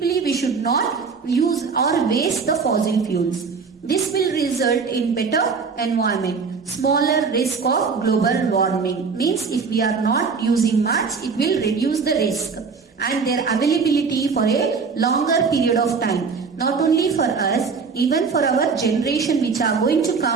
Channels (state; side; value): quieter; left; 5.2 dB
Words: we should not use or waste the fossil fuels. This will result in better environment, smaller risk of global warming. Means if we are not using much, it will reduce the risk and their availability for a longer period of time. Not only for us, even for our generation which are going to